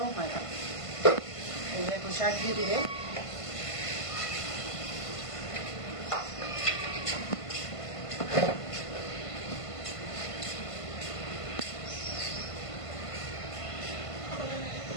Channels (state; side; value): late; right; 1.5 ms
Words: হয় না। এই যে এখন শাক দিয়ে দিবে,